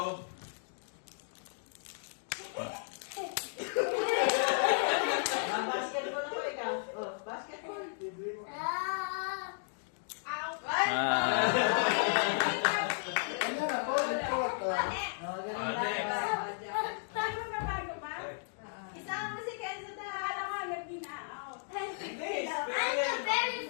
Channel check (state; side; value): silent; right; digital silence